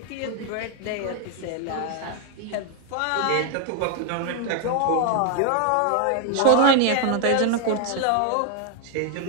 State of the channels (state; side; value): different; both; correlation 0.00